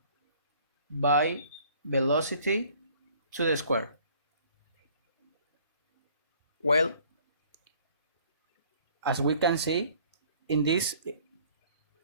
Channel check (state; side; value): inverted; both; correlation -0.56